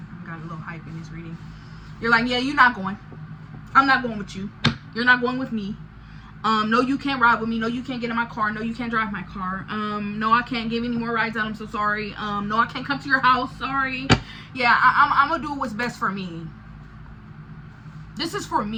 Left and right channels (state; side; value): identical; both; correlation 1.00